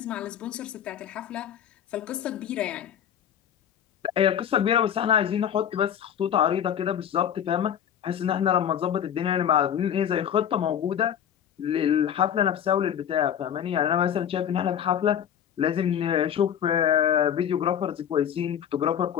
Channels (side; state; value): right; quieter; 9.3 dB